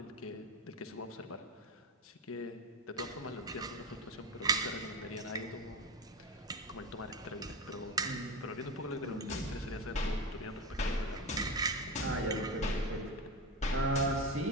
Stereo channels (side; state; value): both; normal; correlation 0.21